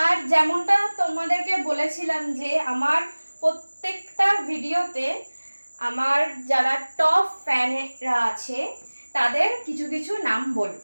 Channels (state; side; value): inverted; both; correlation -1.00